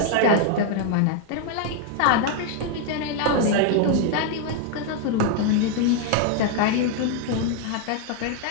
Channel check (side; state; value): both; different; correlation 0.00